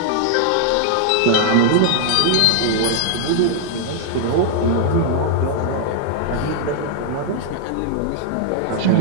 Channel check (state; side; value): different; both; correlation 0.00